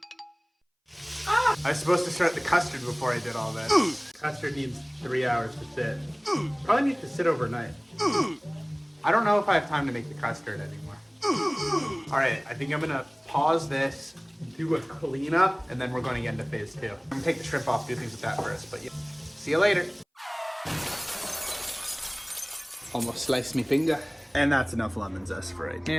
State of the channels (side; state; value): both; identical; correlation 1.00